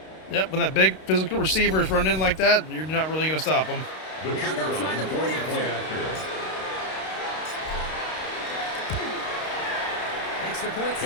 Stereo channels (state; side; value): late; right; 32 ms